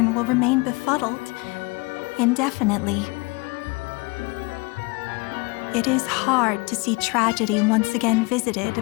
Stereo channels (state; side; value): quieter; right; 27.4 dB